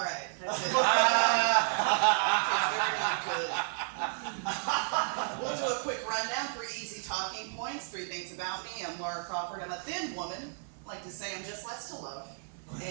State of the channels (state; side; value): silent; left; 56 dB below the other